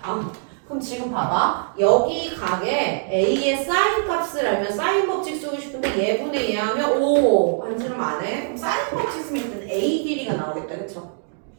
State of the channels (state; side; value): silent; left; 64 dB below the other